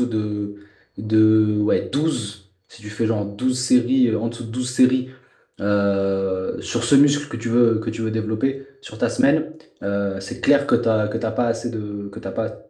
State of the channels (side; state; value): both; identical; correlation 1.00